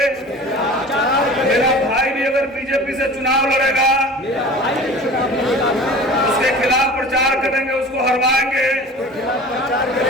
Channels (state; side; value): normal; both; correlation 0.39